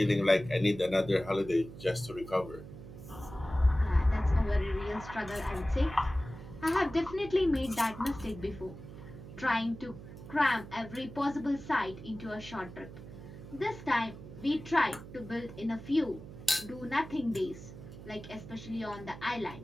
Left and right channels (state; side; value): noise; right; hum, 14 dB below the sound